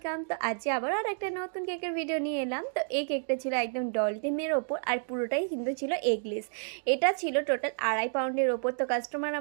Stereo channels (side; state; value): left; silent; 57 dB below the other